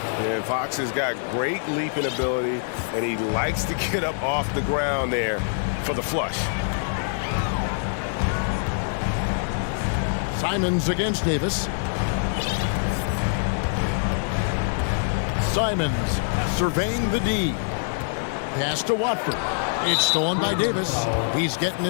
Yeah, Fox has got great leaping ability, and he likes to get up off the ground there for the flush. Simons against Davis. Simons surveying the D. Pass to Watford. It's stolen by Davis. He's getting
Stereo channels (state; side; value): silent; right; 62 dB below the other